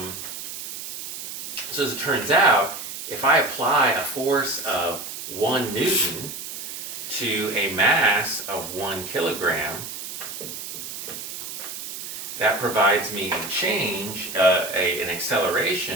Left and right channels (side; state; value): right; noise; hiss, 8 dB below the sound